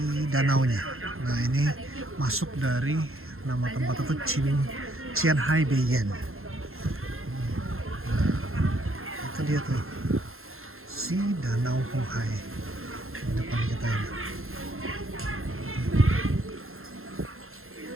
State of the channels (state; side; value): late; left; 0.61 ms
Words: danaunya. Nah, ini masuk dari nama tempat itu Qianhai Beiyan. Nah, itu dia tuh, si Danau Hoa di depan kita ini.